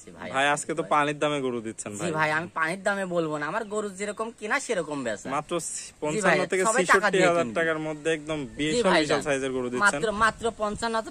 ভাই। ভাই আজকে তো পানির দামে গরু দিচ্ছেন ভাই? জি ভাই, আমি পানির দামে বলবো না, আমার গরু যেরকম কিনা সেরকম বেচা, মাত্র 55 থেকে 66,000 টাকার মধ্যে একদম বিশাল সাইজের গরু দিচ্ছেন। মাত্র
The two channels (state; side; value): identical; both; correlation 1.00